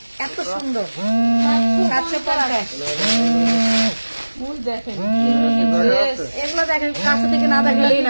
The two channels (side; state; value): both; inverted; correlation -1.00